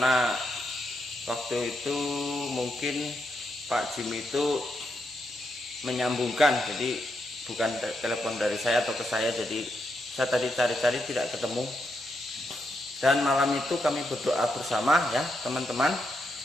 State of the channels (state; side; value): normal; both; correlation 0.82